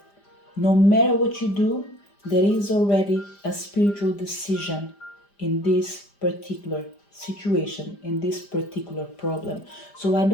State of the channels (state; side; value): late; right; 5.0 ms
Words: no matter what you do, there is already a spiritual decision in this particular situation, in this particular problem. So I